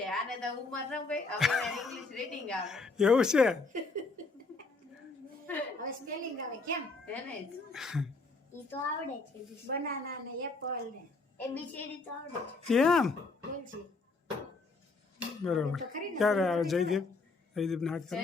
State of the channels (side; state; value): right; quieter; 3.8 dB